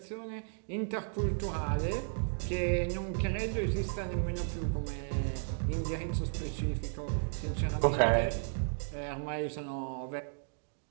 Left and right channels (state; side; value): silent; left; digital silence